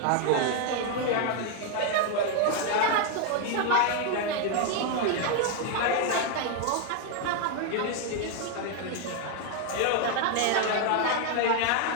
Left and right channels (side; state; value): both; different; correlation 0.01